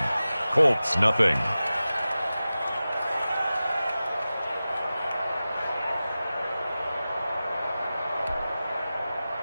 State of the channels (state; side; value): inverted; both; correlation -0.95